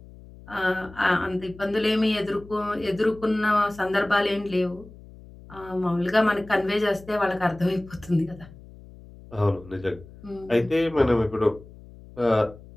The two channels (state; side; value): noise; left; hum, 20 dB below the sound